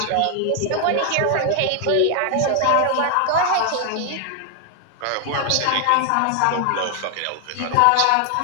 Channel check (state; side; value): different; both; correlation 0.00